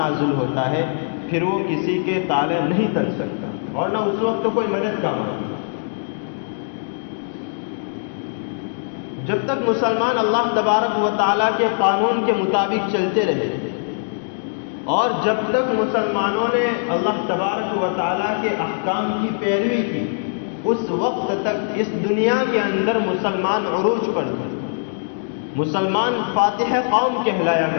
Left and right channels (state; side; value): silent; right; digital silence